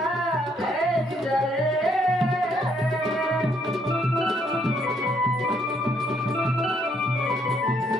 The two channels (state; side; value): normal; both; correlation 0.70